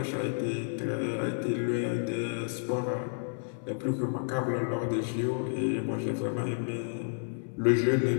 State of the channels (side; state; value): right; silent; 57 dB below the other